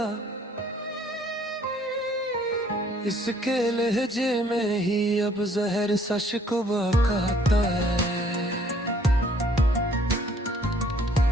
इसके लहजे में ही अब जहर सा शिकवा कहता है।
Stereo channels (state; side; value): normal; both; correlation 0.61